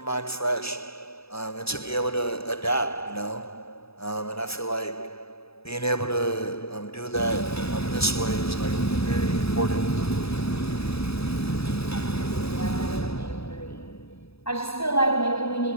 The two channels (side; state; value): right; late; 0.78 ms